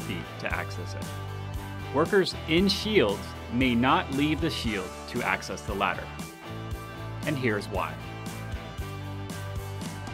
feet to access it. Workers in shields may not leave the shield to access the ladder. And here's why.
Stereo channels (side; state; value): both; identical; correlation 1.00